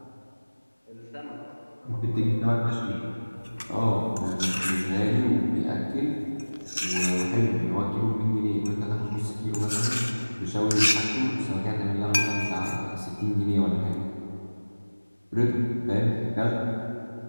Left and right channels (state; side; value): inverted; both; correlation -1.00